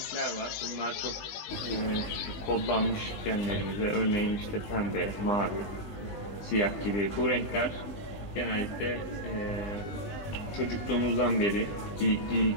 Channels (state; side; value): late; right; 19 ms